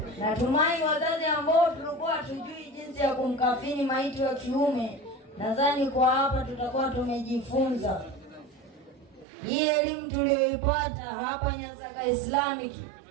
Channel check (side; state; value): left; drops out; at 9.2 s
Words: Natumai wazazi ambao tulikuwa hatujui jinsi ya kumkafini maiti wa kiume, nadhani kwa hapa tutakuwa tumejifunza. Hii elimu tuliyoipata hapa Nyansaka Islamic,